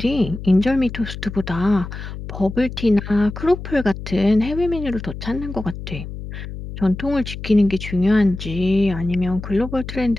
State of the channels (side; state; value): left; noise; hum, 10 dB below the sound